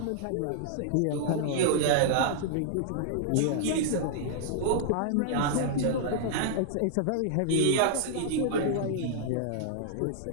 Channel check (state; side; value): different; both; correlation -0.01